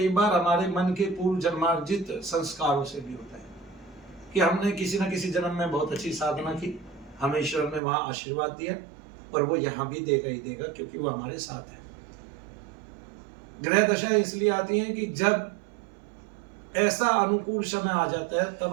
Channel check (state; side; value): drops out; left; at 7.8 s